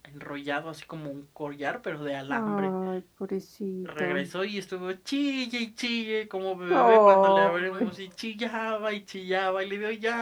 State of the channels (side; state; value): both; identical; correlation 1.00